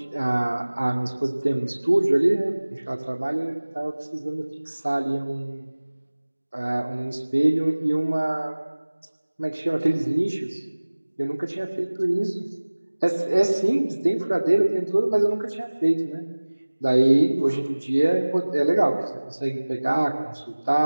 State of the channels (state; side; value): inverted; both; correlation -1.00